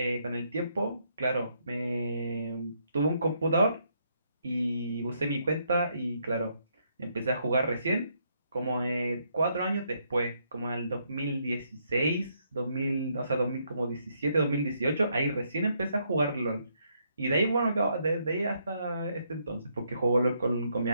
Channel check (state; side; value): inverted; both; correlation -0.74